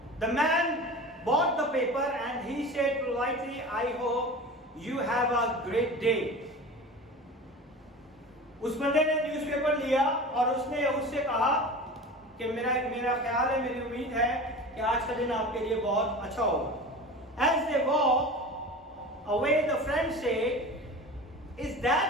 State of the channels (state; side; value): normal; both; correlation 0.34